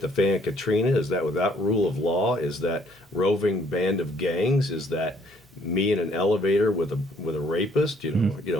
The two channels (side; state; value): both; normal; correlation 0.63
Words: the fan Katrina? Is that without rule of law? Is that roving band of gangs? Is that me in an elevator with a rapist?